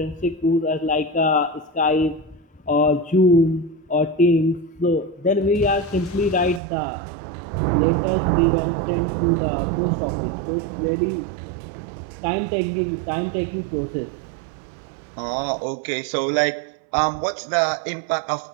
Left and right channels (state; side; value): drops out; left; at 6.6 s